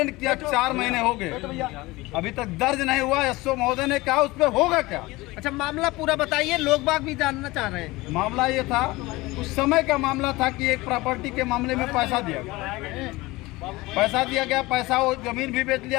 किया, 4 महीने हो गए, अभी तक दर्ज नहीं हुआ। एसओ महोदय ने कहा उस पर होगा क्या। अच्छा, मामला पूरा बताइए, लोग बाग भी जानना चाह रहे हैं। मामला ये था, उस समय का मामला था कि एक प्रॉपर्टी के मामले में पैसा दिया गया, पैसा वो जमीन भी बेच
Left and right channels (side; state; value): right; quieter; 20.9 dB